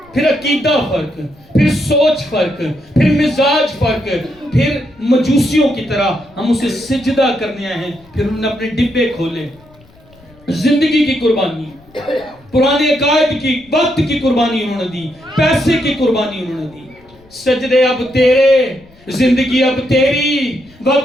پھر عقیدہ فرق, پھر سوچ فرق, پھر مزاج فرق, پھر مجوسیوں کی طرح ہم اسے سجدہ کرنے آئے ہیں. پھر انہوں نے اپنے ڈبے کھولے, زندگی کی قربانی, پرانے عقائد کی, وقت کی قربانی انہوں نے دی, پیسے کی قربانی انہوں نے دی. سجدے اب تیرے, زندگی اب تیری,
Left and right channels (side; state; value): left; noise; rumble, 28 dB below the sound